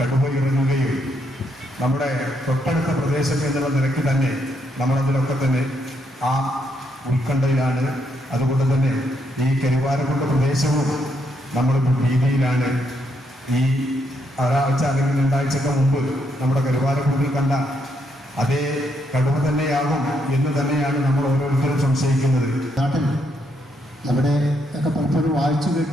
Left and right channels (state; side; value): normal; both; correlation 0.76